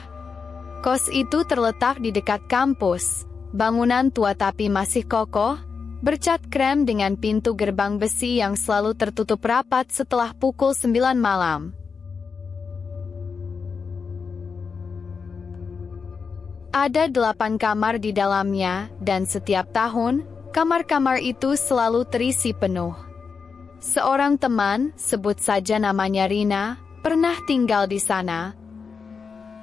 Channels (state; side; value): quieter; right; 5.4 dB